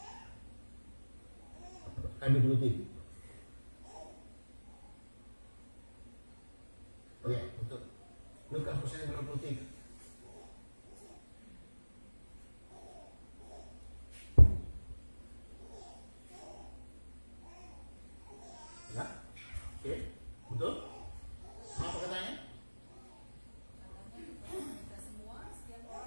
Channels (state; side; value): inverted; both; correlation -1.00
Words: ayat 23. Iya, betul. Lukas pasal 23. Ya, oke. Betul? Apa katanya? Katanya kepada kita semua, setiap